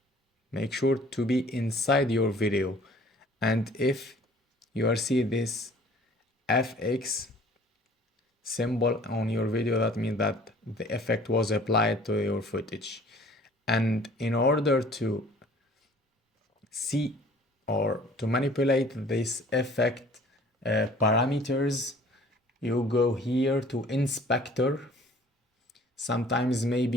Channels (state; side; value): normal; both; correlation 0.52